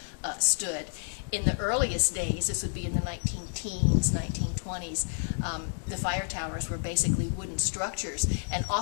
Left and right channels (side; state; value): right; silent; digital silence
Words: stood. In the earliest days, this would be in the 19-teens, 1920s, the fire towers were basically wooden structures and